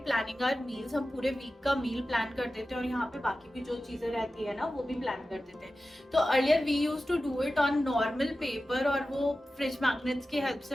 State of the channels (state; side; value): normal; both; correlation 0.94